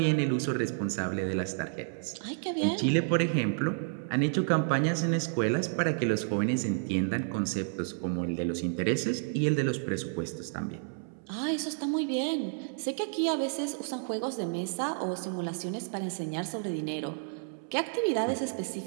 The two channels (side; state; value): left; silent; 57 dB below the other